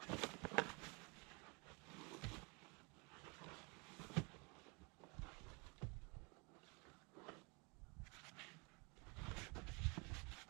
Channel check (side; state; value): left; quieter; 30.4 dB